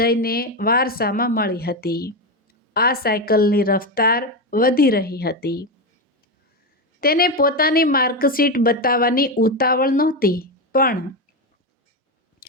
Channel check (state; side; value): normal; both; correlation 0.12